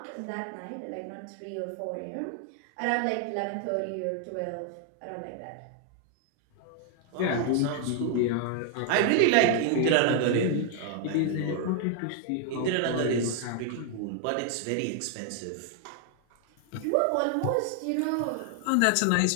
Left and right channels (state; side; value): different; both; correlation 0.00